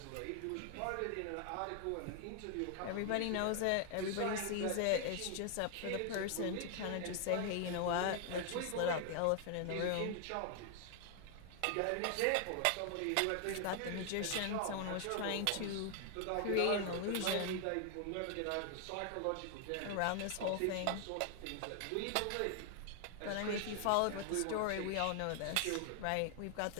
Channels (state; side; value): different; both; correlation 0.00